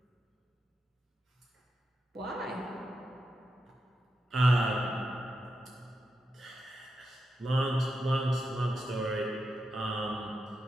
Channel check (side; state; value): both; normal; correlation 0.87